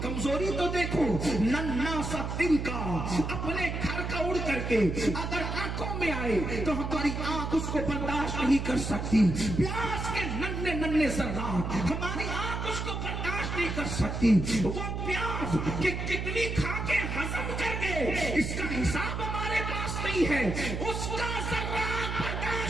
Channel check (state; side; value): noise; right; hum, 3 dB below the sound